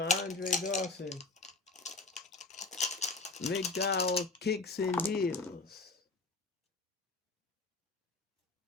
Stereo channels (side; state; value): right; quieter; 3.6 dB